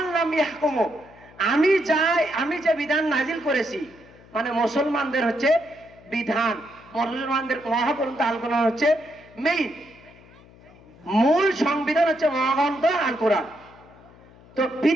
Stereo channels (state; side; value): noise; left; hum, 24 dB below the sound